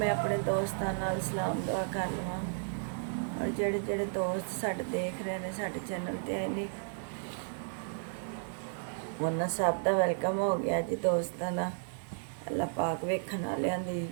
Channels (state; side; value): silent; left; digital silence